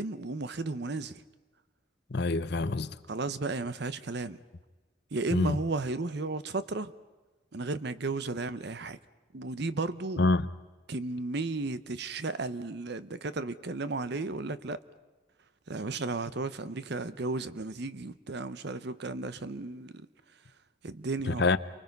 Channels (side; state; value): both; normal; correlation 0.40